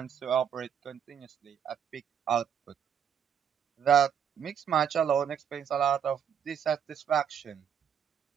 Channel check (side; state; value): left; quieter; 8.2 dB